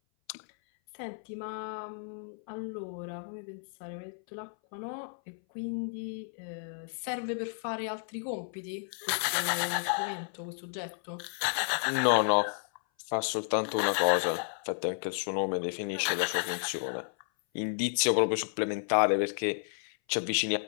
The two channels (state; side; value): silent; right; 56 dB below the other